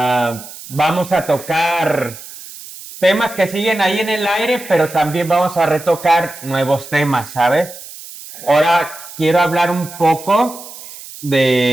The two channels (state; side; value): noise; right; hiss, 15 dB below the sound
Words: Vamos a tocar temas que siguen ahí en el aire, pero también vamos a retocar nuevos temas, ¿sabes? Ahora quiero hablar un poco